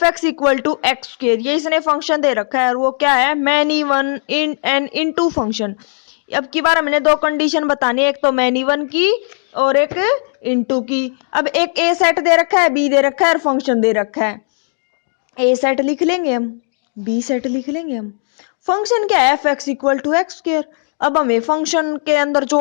X equal to X square, ये इसने फंक्शन दे रखा है और वो क्या है, many one in and into function. अब की बार हमने 2 कंडीशन बतानी है, एक तो मैनी वन की और एक इनटू की। अब एक ए सेट दे रखा है, बी दे रखा है और फंक्शन दे रखा है। ए सेट लिख लेंगे हम, बी सेट लिख लेंगे हम। फंक्शन क्या है, F X equal to X square. अब हमें फंक्शन के अंदर जो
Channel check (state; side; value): silent; right; 57 dB below the other